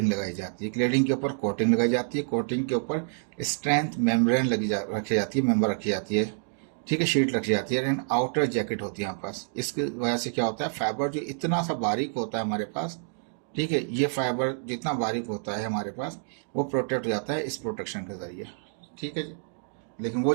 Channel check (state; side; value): silent; left; digital silence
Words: लगाई जाती है, क्लेडिंग के ऊपर कोटिंग लगाई जाती है, कोटिंग के ऊपर स्ट्रेंथ मेम्ब्रेन रखी जाती है, मेम्बर रखी जाती है। ठीक है, शीट रखी जाती है, एंड आउटर जैकेट होती है हमारे पास। इसकी वजह से क्या होता है, फाइबर जो इतना सा बारीक होता है हमारे पास, ठीक है, ये फाइबर जितना बारीक होता है हमारे पास वो प्रोटेक्ट हो जाता है इस प्रोटेक्शन के ज़रिए। ठीक है जी, लेकिन वो